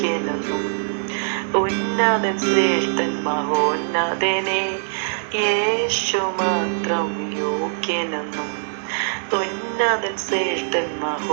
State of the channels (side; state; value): left; silent; digital silence